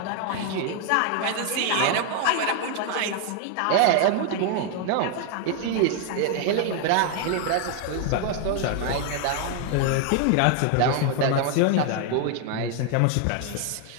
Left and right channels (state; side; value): different; both; correlation 0.00